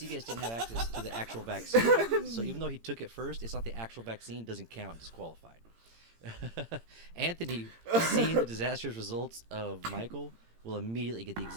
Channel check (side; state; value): left; late; 18 ms